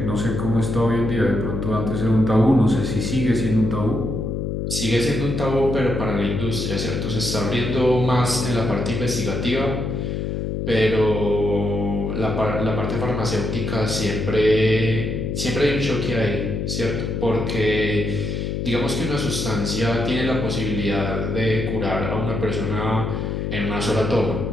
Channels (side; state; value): left; noise; hum, 2 dB below the sound